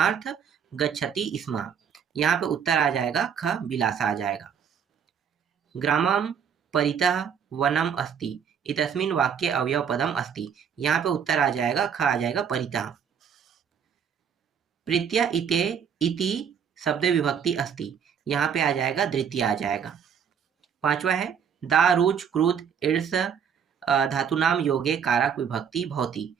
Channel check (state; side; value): quieter; left; 7.6 dB